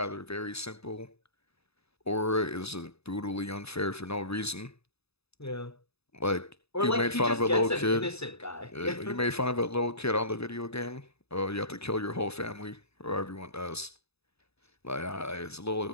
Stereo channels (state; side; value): late; right; 0.79 ms